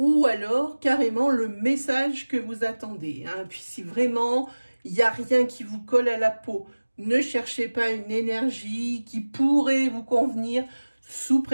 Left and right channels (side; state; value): both; inverted; correlation -1.00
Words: alors carrément le message que vous attendez. Puis si vraiment il n'y a rien qui vous colle à la peau, ne cherchez pas une énergie qui pourrait vous convenir sous